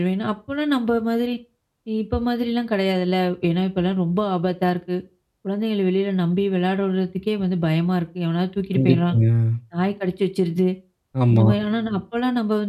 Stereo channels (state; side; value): identical; both; correlation 1.00